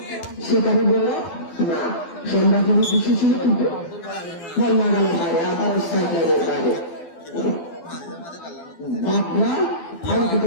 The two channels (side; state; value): right; late; 12 ms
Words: সেখানে বলল না সন্ধ্যাগুলো বেশি ছিল কিন্তু বল না গেল বাইরে আবার সাইডলাইনের বাইরে বাবলা